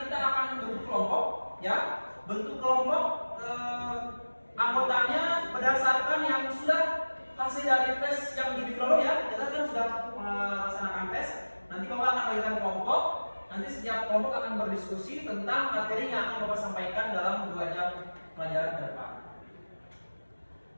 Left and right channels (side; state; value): both; inverted; correlation -1.00